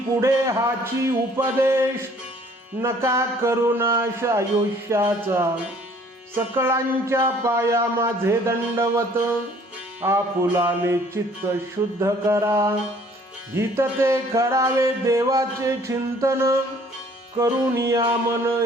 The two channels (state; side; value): normal; both; correlation 0.57